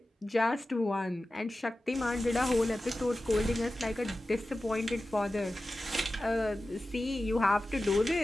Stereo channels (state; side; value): normal; both; correlation 0.94